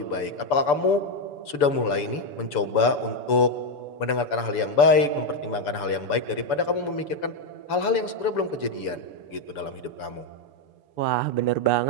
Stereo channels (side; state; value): right; late; 6.9 ms